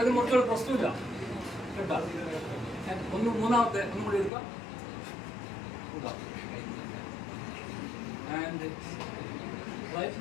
മുറിച്ചോളൂ, പ്രശ്നമില്ല കേട്ടോ. മൂന്നാമത്തെ ഒന്നും കൂടി എടുക്കാം, വിടാം. ആൻഡ് റൈറ്റ്,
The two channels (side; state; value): right; drops out; at 4.3 s